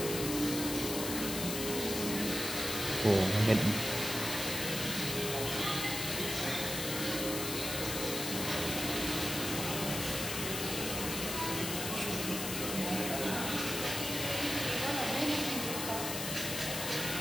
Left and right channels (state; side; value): noise; left; hiss, 3 dB below the sound